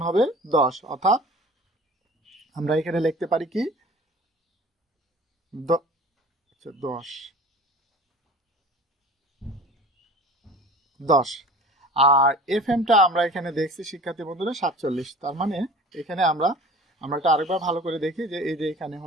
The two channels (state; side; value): normal; both; correlation 0.42